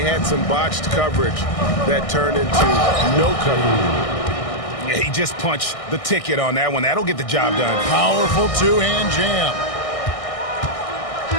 had some botched coverage that turned into no coverage. Yeah, he just punched the ticket on that one. That'll get the job done. Powerful 2-hand jam.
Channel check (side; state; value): right; late; 1.6 ms